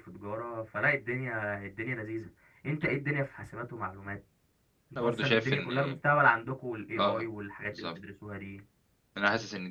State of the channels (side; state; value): both; identical; correlation 1.00